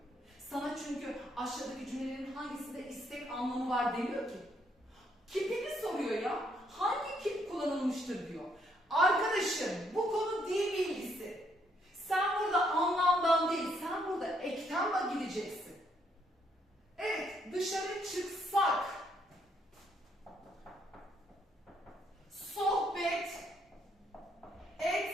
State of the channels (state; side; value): normal; both; correlation 0.72